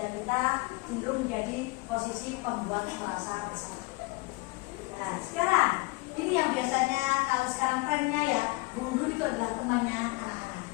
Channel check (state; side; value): quieter; right; 24.3 dB